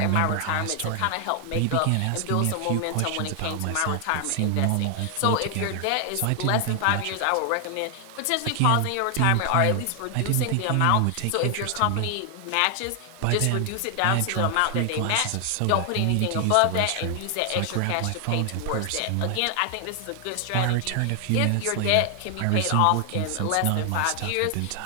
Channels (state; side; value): different; both; correlation 0.00